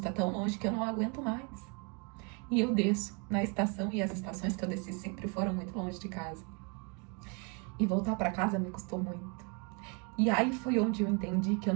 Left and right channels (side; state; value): left; quieter; 34.2 dB